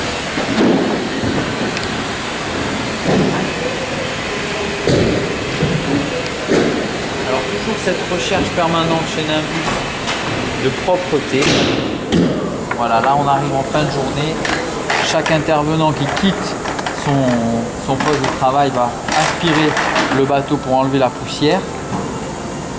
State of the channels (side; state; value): both; identical; correlation 1.00